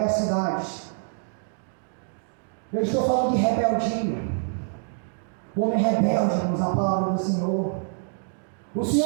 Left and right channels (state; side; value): silent; left; digital silence